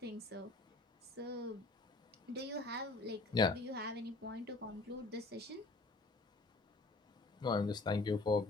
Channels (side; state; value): right; quieter; 3.3 dB